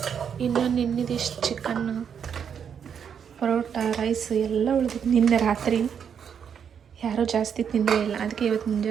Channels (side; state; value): left; quieter; 7.6 dB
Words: ಇನ್ನು ನಿನ್ನಿದಿಷ್ಟು ಚಿಕನ್ನು, ಪರೋಟ, ರೈಸ್ ಎಲ್ಲ ಉಳಿದಿತ್ತು ನಿನ್ನೆ ರಾತ್ರಿ. ಯಾರೂ ಜಾಸ್ತಿ ತಿಂದೇ ಇಲ್ಲ, ಅದಕ್ಕೆ ಇವತ್ತು